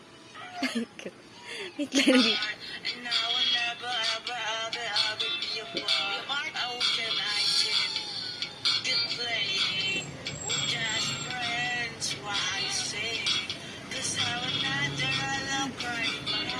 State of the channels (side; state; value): both; identical; correlation 1.00